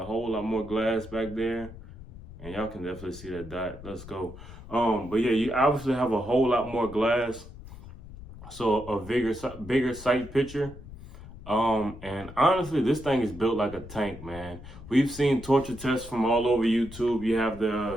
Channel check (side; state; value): left; noise; rumble, 15 dB below the sound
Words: whole lot more glass back there, and y'all can definitely see that dot. Let's go. But yeah, you obviously have a whole lot more glass. So a bigger sight picture. And honestly, this thing is built like a tank, man. We've seen torture tests from all over YouTube. You have